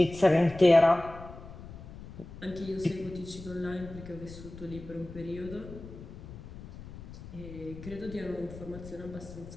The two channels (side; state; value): left; noise; rumble, 14 dB below the sound